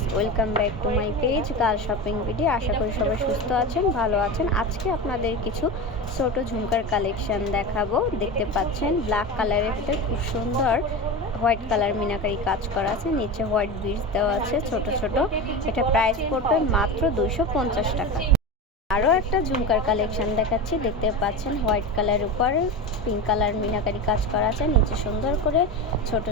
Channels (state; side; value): normal; both; correlation 0.24